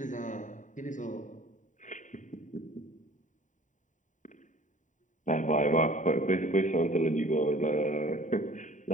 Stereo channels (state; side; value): late; right; 0.36 ms